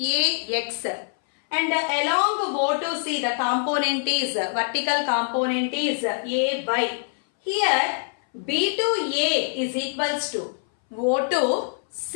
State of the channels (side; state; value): right; silent; 60 dB below the other